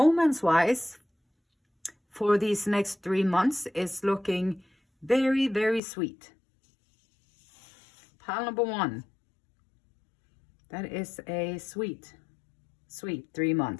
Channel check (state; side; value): drops out; right; at 5.8 s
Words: for these next 3 months, is looking very, very sweet. Pile number 1. That is a sweet 3